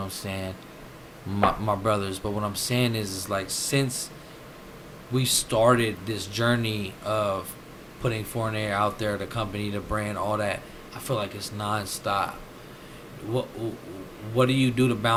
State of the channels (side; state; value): both; identical; correlation 1.00